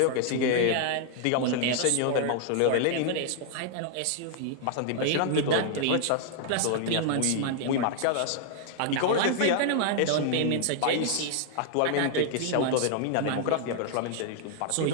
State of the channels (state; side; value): different; both; correlation -0.01